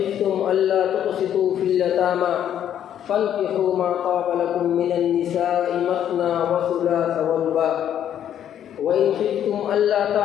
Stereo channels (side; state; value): right; quieter; 10.1 dB